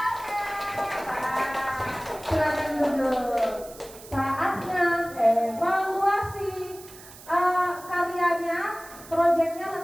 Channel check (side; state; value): right; noise; hiss, 18 dB below the sound